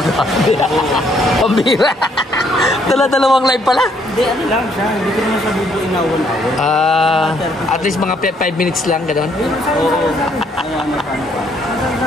Pambira. Dala-dalawang live pala. Hindi, ano lang siya. Hindi ko naman siya bubuin na awon-awon. At least mga 5 minutes lang, gano'n? Oo. Ano pa.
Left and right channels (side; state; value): both; normal; correlation 0.68